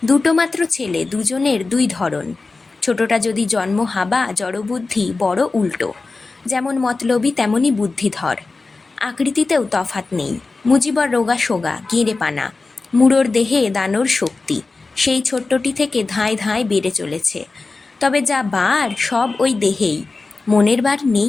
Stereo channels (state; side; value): quieter; right; 3.8 dB